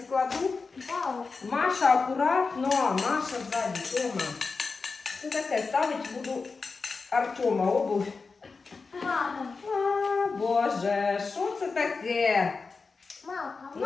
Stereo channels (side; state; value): right; quieter; 4.4 dB